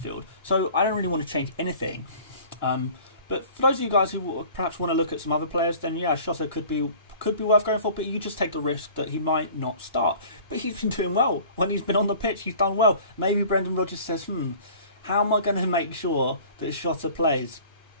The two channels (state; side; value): inverted; both; correlation -0.46